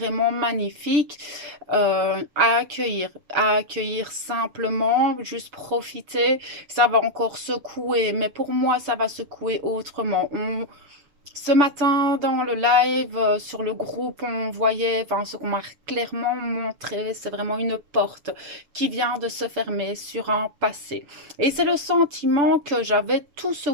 magnifiques à accueillir simplement, juste profiter. Ça va encore secouer, mais pour moi ça va secouer autrement. Ce matin, dans le live, sur le groupe, on voyait, enfin, ce qu'on m'a clairement montré, c'est vraiment une porte qui vient de se fermer sur un passé. Et c'est le sentiment que j'avais tout ce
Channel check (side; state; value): left; late; 6.9 ms